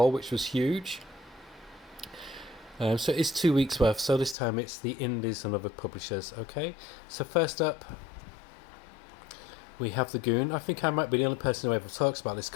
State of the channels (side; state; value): right; drops out; at 4.4 s